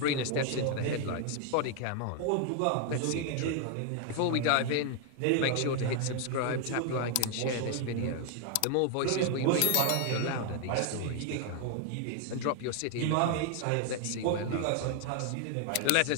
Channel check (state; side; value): different; both; correlation 0.00